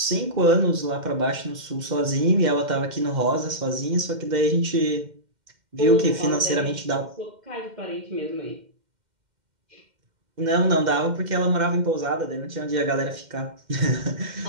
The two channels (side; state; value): left; late; 2.1 ms